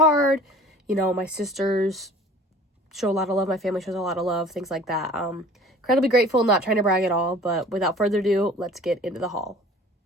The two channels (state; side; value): normal; both; correlation 0.47